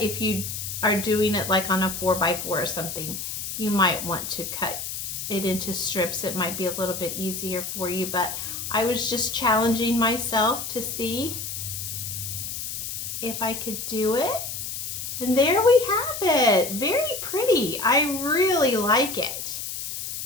if you are doing it like on a 4x4 or something, you might want to cut it into strips. It might be a little bit easier for you, but I was just challenging myself to see if I could do it. And there we have it. Very pretty. I really like it.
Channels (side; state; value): left; noise; hiss, 6 dB below the sound